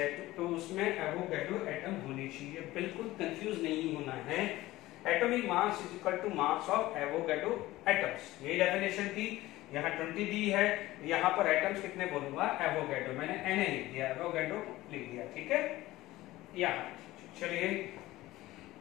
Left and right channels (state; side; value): quieter; right; 17.3 dB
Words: तो उसमें एवोगैड्रो एटम होने चाहिए। बिल्कुल कंफ्यूज नहीं होना है, atomic mass is equal to mass of Avogadro atoms. यही डेफिनेशन थी। यहाँ 20 दी है, यहाँ पर एटम्स कितने बोलूंगा एवोगैड्रो, मैंने Na लिख दिया, एवोगैड्रो लिख दिया, ठीक है। यहाँ चलिए,